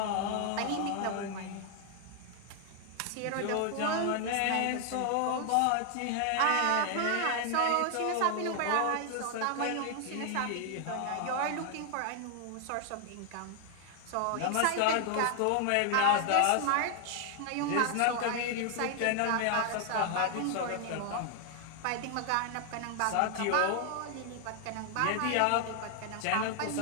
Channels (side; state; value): both; different; correlation 0.00